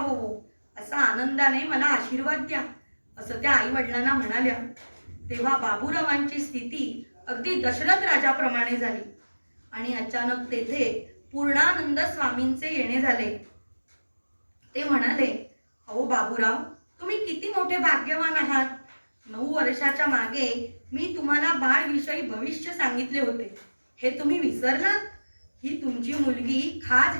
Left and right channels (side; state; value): both; inverted; correlation -1.00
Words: असा आनंदाने मला आशीर्वाद द्या असं त्या आई वडिलांना म्हणाल्या. तेव्हा बाबूरावांची स्थिती अगदी दशरथ राजाप्रमाणे झाली आणि अचानक तेथे पूर्णानंद स्वामींचे येणे झाले. ते म्हणाले, अहो बाबूराव, तुम्ही किती मोठे भाग्यवान आहात. 9 वर्षाच्या मागे मी तुम्हाला बाळविषयी भविष्य सांगितले होते. हे तुम्ही विसरलात? ही तुमची मुलगी खास